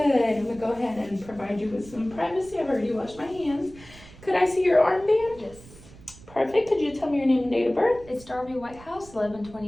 I'm going to go ahead and provide you with some privacy. I've already washed my hands. Could I see your armband? Yes. Perfect. Could you tell me your name and date of birth? It's Darby Whitehouse,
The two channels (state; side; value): noise; right; rumble, 20 dB below the sound